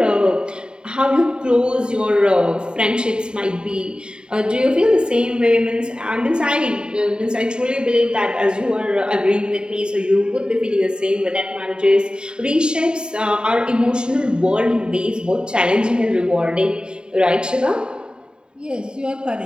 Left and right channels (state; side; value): late; left; 0.049 ms